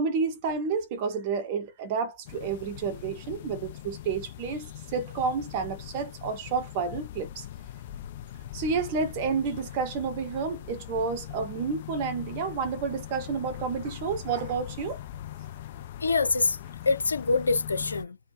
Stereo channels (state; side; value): inverted; both; correlation -0.41